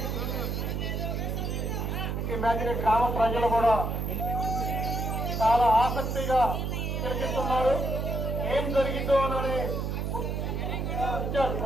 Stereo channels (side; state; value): right; noise; hum, 2 dB below the sound